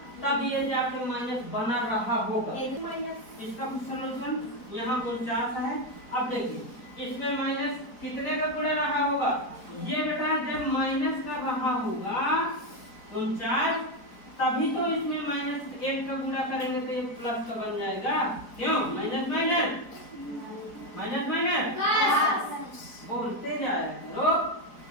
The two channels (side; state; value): right; late; 4.3 ms